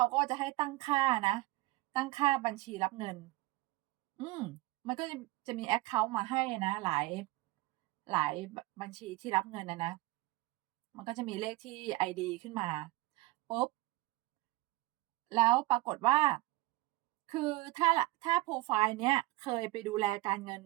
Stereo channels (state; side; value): quieter; left; 19.3 dB